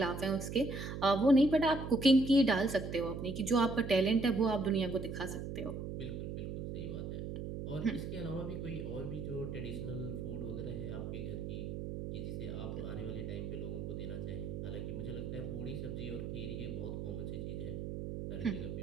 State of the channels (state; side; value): noise; right; hum, 5 dB below the sound